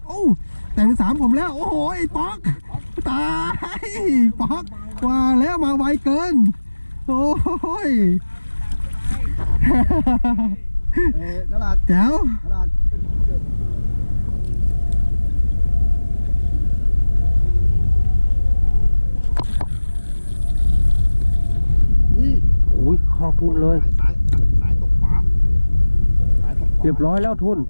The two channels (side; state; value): both; inverted; correlation -1.00